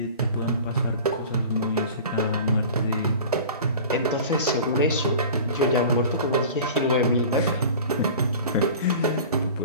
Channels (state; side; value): inverted; both; correlation -0.39